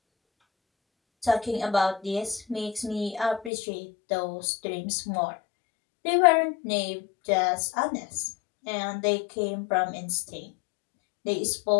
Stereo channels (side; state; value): right; drops out; at 3.5 s